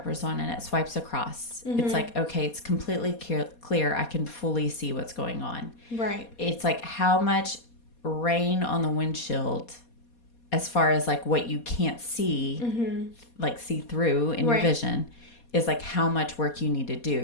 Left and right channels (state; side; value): late; right; 4.2 ms